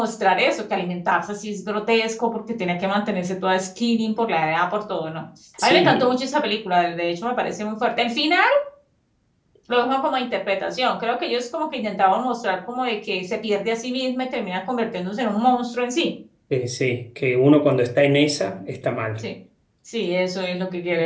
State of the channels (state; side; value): identical; both; correlation 1.00